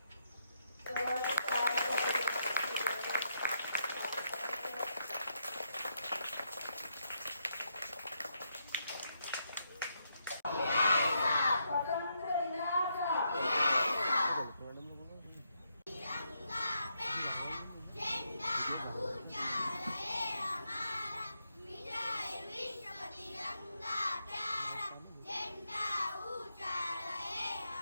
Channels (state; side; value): inverted; both; correlation -0.79